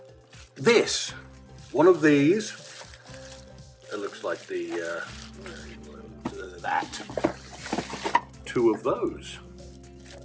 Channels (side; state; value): both; identical; correlation 1.00